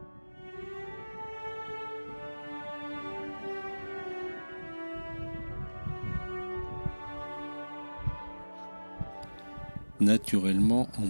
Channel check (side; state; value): both; inverted; correlation -1.00